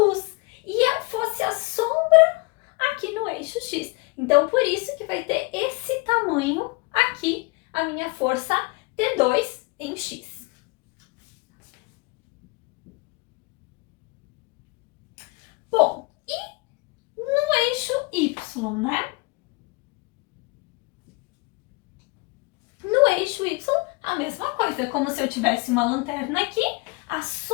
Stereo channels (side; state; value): right; quieter; 27.1 dB